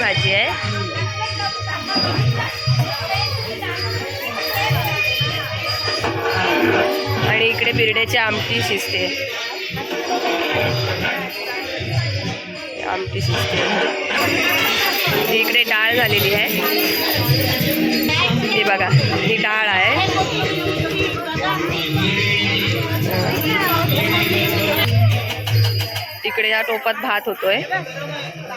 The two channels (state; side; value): identical; both; correlation 1.00